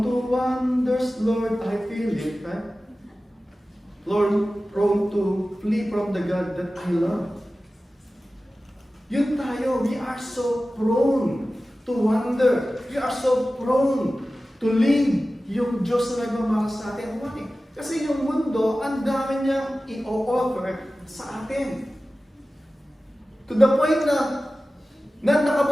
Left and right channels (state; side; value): normal; both; correlation 0.96